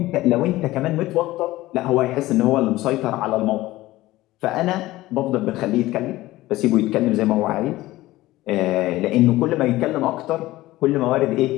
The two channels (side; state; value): right; quieter; 17.4 dB